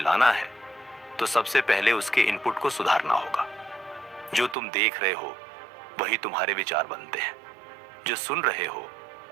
है तो सबसे पहले उसके इनपुट को सुधारना होगा। जो तुम देख रहे हो वही तुम्हारे विचार बनते हैं, जो सुन रहे हो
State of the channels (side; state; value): left; drops out; at 4.5 s